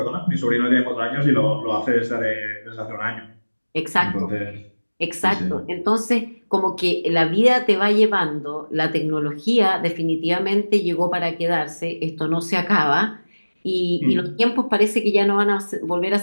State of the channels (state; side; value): inverted; both; correlation -1.00